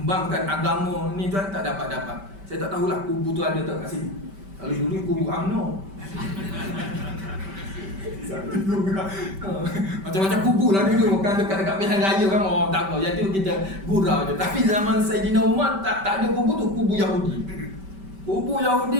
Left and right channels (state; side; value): late; left; 5.2 ms